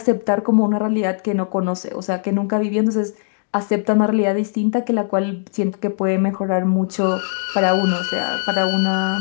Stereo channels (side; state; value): right; silent; digital silence